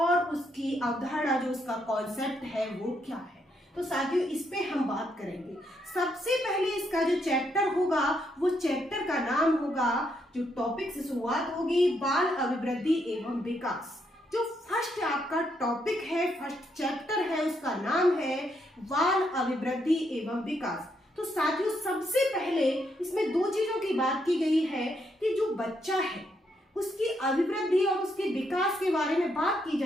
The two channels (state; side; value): normal; both; correlation 0.77